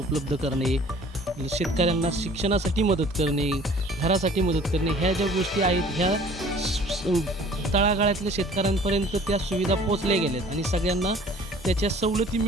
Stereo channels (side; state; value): both; normal; correlation 0.51